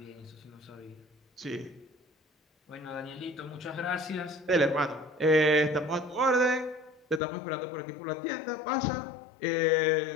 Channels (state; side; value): drops out; right; at 7.2 s